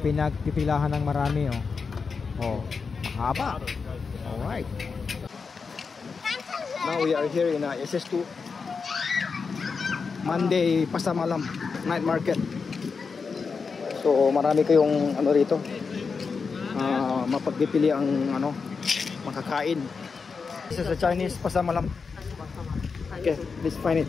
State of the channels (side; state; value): right; quieter; 5.1 dB